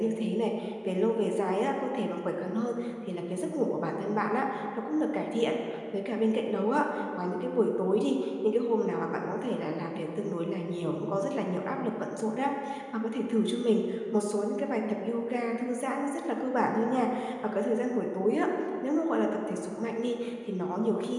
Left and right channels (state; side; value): identical; both; correlation 1.00